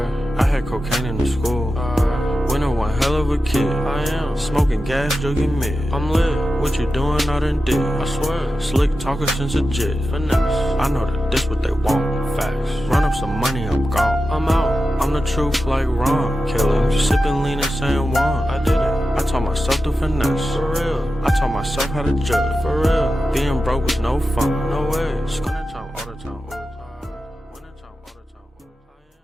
I had cocaine in the school. Winter one hell of a kid. I am smoking gas, jogging mid. I'm lit. What you doing out in dick? I swear. Slick talker since a jet. Finesse. I know that this what they want. Facts. Run up some money, I'm gone. I'm out. I'm the truth like Ron. Killing. Sipping lean and saying Juan. I did it. I taught myself to finesse. For real. I taught myself how to judge. For real. Being broke was no fun. No way. Wintertime all the time. Wintertime all the time.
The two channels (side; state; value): both; normal; correlation 0.92